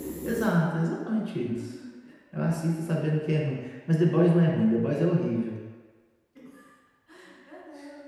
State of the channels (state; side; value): identical; both; correlation 1.00